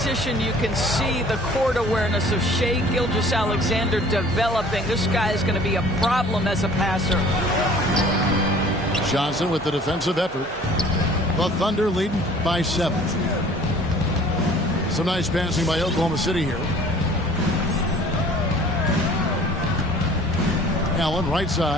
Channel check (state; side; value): normal; both; correlation 0.51